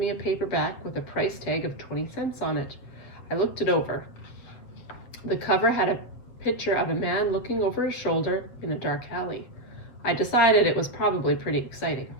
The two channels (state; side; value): late; right; 8.3 ms